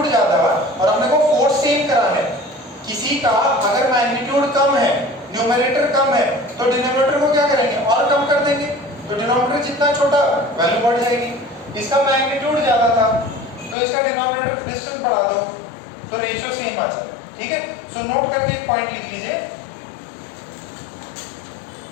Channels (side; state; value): right; drops out; at 13.8 s